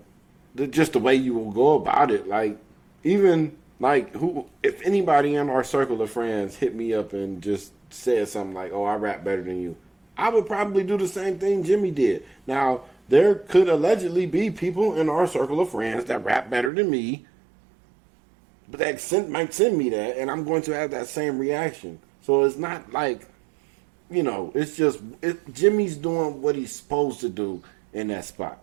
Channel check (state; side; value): drops out; left; at 16.7 s